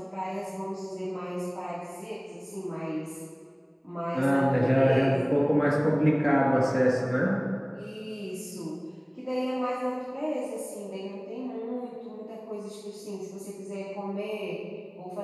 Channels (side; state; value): both; identical; correlation 1.00